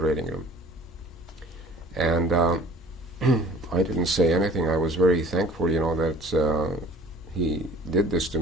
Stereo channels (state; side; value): normal; both; correlation 0.49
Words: room. And I didn't say anything. I was very thankful, that he did this to